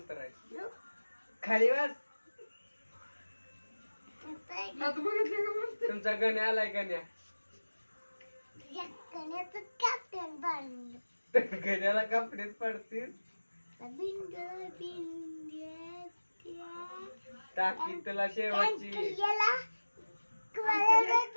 आहे. खाली बस. आता बघितलं का म्हणते? तुमचा गण्या आलाय गण्या. तुझ्या कण्याचं कॅप्टन बांधलं. गण्याला कपडेच पडतील. बिंद बिंद्या टाकी तुला शेवटची. अंकलला कोणाला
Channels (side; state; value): both; inverted; correlation -1.00